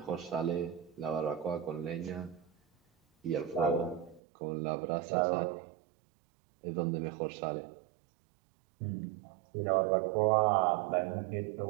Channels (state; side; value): drops out; left; at 4.2 s